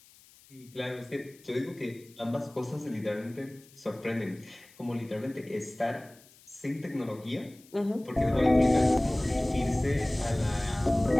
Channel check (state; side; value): noise; left; hiss, 26 dB below the sound